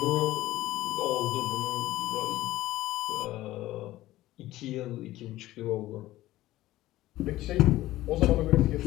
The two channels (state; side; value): quieter; right; 16.1 dB